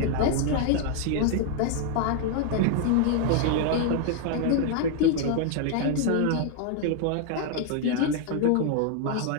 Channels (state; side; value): different; both; correlation 0.00